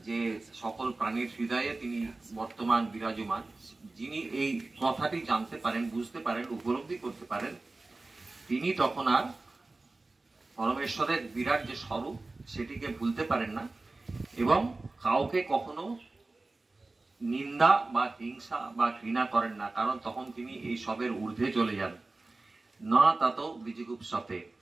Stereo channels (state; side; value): quieter; left; 3.3 dB